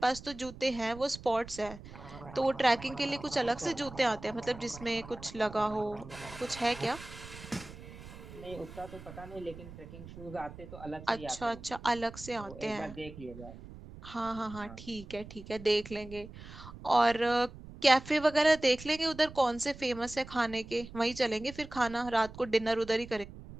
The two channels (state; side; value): noise; right; rumble, 15 dB below the sound